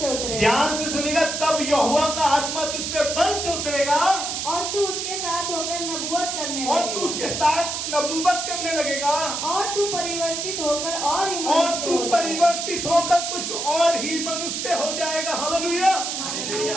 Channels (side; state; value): right; noise; hiss, 3 dB below the sound